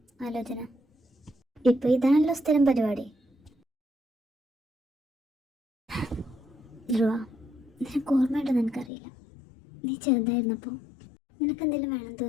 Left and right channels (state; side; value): drops out; right; at 8.9 s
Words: ആലോചന? ഇപ്പൊ ഇതാണല്ലോ സ്ഥിരം പരിപാടി. ധ്രുവ, നിനക്ക് ഓർമ്മയുണ്ടെന്ന് എനിക്കറിയില്ല. നീ ചെറുതായിരുന്നപ്പോൾ നിനക്കെന്തെങ്കിലും വേണം